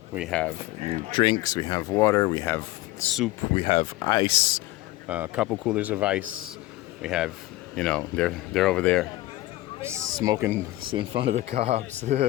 We have drinks. We have water. We have soup. We have ice. A couple coolers of ice. We have, they're over there smoking in front of the cops.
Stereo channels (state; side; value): quieter; right; 17.8 dB